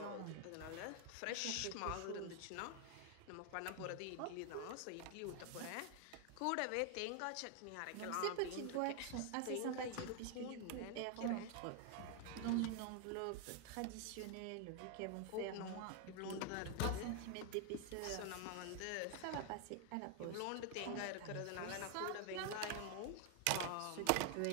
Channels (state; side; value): different; both; correlation 0.01